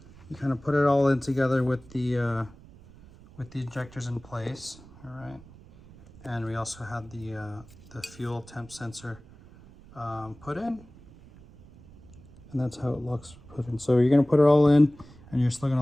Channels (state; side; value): noise; right; rumble, 22 dB below the sound